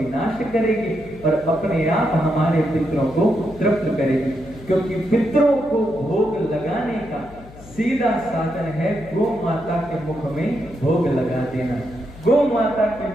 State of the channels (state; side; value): noise; left; hum, 19 dB below the sound